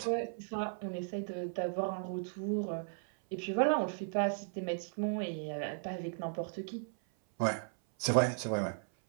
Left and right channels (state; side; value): silent; left; 54 dB below the other